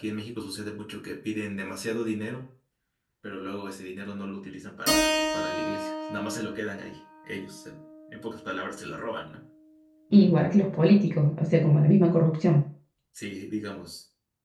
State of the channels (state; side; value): identical; both; correlation 1.00